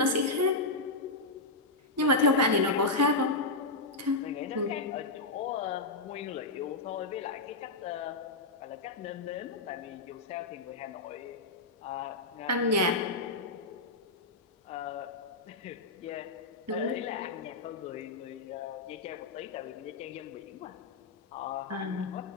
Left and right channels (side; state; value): right; quieter; 3.2 dB